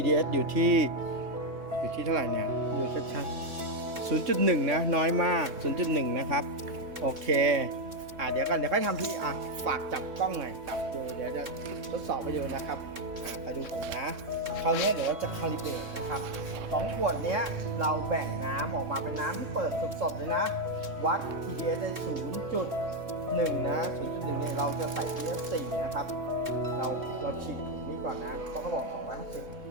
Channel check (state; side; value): late; left; 3.6 ms